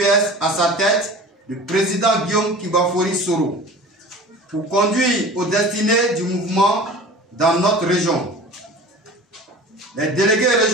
à sa tête, le président Guillaume Kibafori Soro, pour conduire aux destinées du mouvement dans notre région. Les délégués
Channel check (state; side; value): normal; both; correlation 0.39